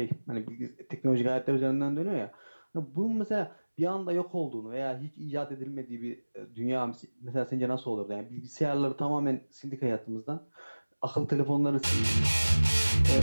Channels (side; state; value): both; inverted; correlation -1.00